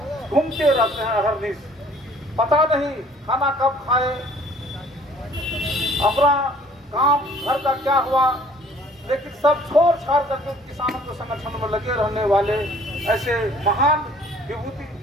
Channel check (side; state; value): both; normal; correlation 0.55